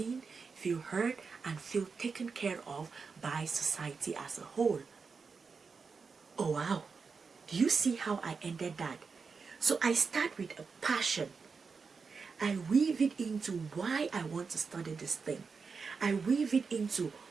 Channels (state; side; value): quieter; left; 5.1 dB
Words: feel heard, and feel taken care of by society as a whole. Oh wow, do you see how I ended that? So I start with a passion. I weave it into why I want to study this thing. I weave it into